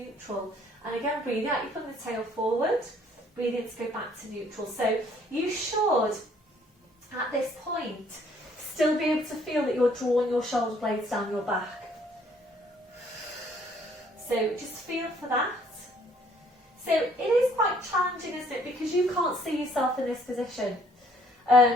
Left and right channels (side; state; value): both; normal; correlation 0.62